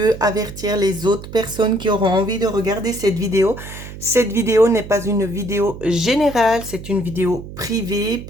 avertir les autres personnes qui auront envie de regarder cette vidéo. Cette vidéo n'est pas une vidéo générale, c'est une vidéo privée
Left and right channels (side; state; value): right; noise; hum, 13 dB below the sound